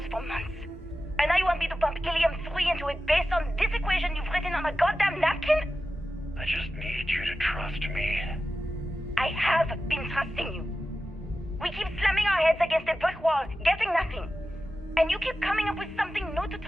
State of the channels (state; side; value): normal; both; correlation 0.93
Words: for months. And now you want me to pump helium-3 into it based on this equation you've written on a goddamn napkin? I just need you to trust me. I have been trusting you. We keep slamming our heads against a brick wall, getting nothing. And you keep coming up with something new to